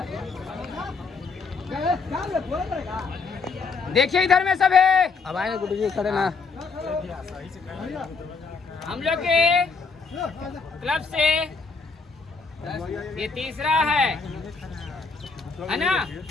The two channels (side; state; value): right; quieter; 4.7 dB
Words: देखिए इधर में सब है। अब आए गुड्डू जी खड़े ना। हम लोग के क्लब से ये तीसरा है ना?